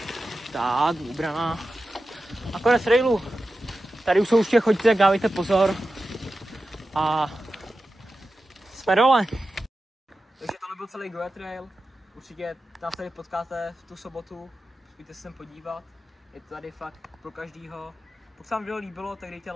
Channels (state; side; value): normal; both; correlation 0.92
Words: tak, vybraná. A konec trailu. Tady už jsou určitě, chodíte, tak dávejte pozor. A jsme dole. Takže tohle byl celý Goa Trail. Určitě nás tady potkáte v tu sobotu. Pojďte se sem podívat. Je to tady fakt pro každýho. Pokud se vám video líbilo, tak dejte